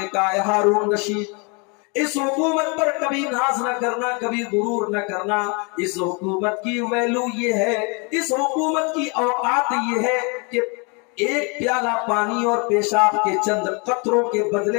کہا اے ہارون رشید اس حکومت پر کبھی ناز نہ کرنا، کبھی غرور نہ کرنا، اس حکومت کی ویلو یہ ہے، اس حکومت کی اوقات یہ ہے کہ ایک پیالہ پانی اور پیشاب کے چند قطروں کے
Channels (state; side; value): quieter; right; 32.5 dB